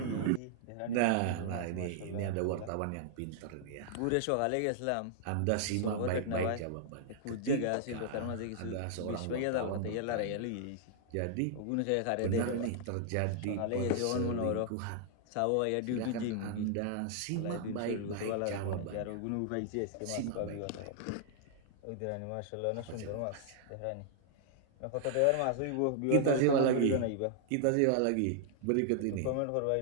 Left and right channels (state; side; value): different; both; correlation -0.01